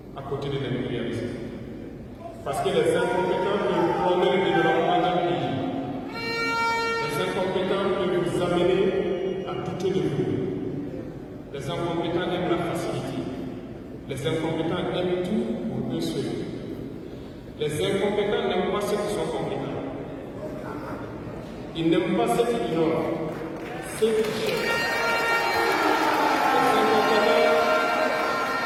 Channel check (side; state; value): both; identical; correlation 1.00